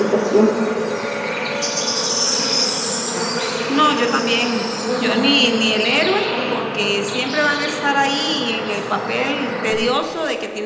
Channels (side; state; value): both; identical; correlation 1.00